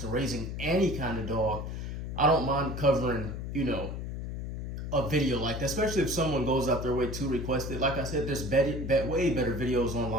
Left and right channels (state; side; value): noise; left; hum, 5 dB below the sound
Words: raising any kind of dog, I don't mind covering, a video like that, especially if someone goes out their way to request it. Like I said, there's way better videos